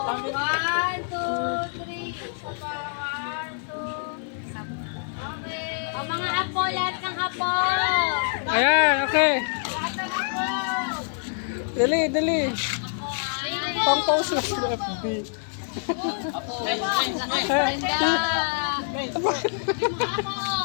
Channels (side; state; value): right; silent; digital silence